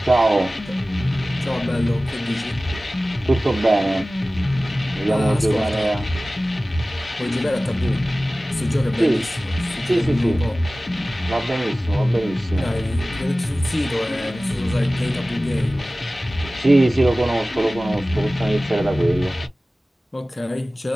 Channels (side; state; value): both; normal; correlation 0.97